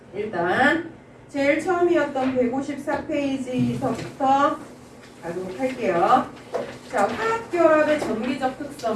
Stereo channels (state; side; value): identical; both; correlation 1.00